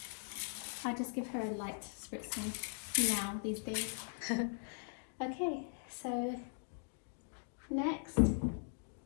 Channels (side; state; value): right; silent; digital silence